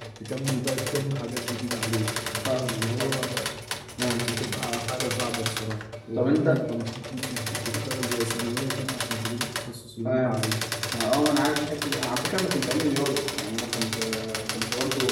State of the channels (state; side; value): identical; both; correlation 1.00